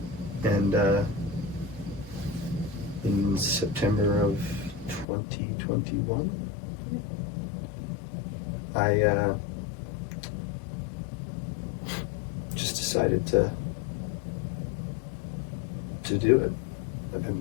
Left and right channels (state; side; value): drops out; right; at 5.1 s